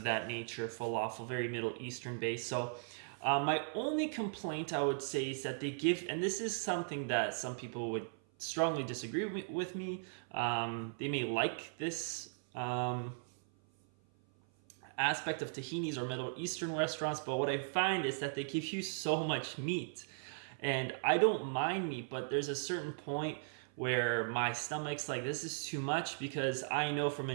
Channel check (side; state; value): left; silent; 53 dB below the other